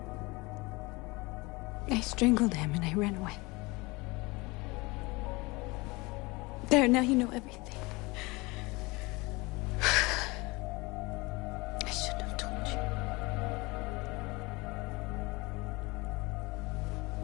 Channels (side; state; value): right; quieter; 24.1 dB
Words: I strangled him and I ran away. There, now you know everything. I shouldn't have told you.